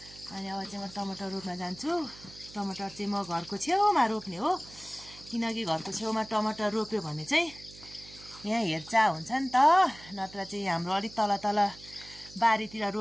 अनि अब चाहिँ म टमाटर रोप्न जान्छु। टमाटर चाहिँ म घरको छेउमा रोप्ने हो, किनकि घरको छेउमा टमाटर रोप्यो भने चाहिँ यहाँ हेरचाह हुन्छ नि त। नत्र चाहिँ हाम्रो अलिक तल तल बारीतिर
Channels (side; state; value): right; noise; hum, 20 dB below the sound